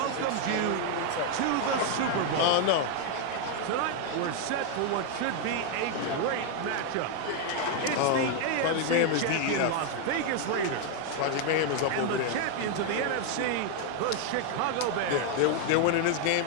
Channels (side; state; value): both; different; correlation 0.01